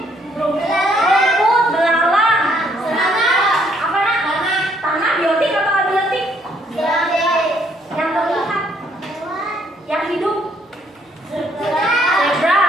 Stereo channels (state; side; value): normal; both; correlation 0.68